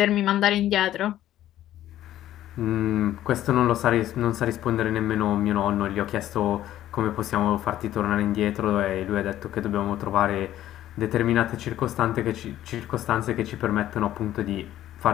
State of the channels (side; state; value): right; quieter; 12.9 dB